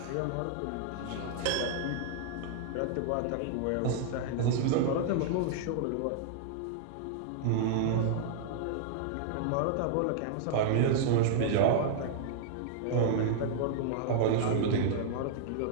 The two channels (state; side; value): different; both; correlation -0.01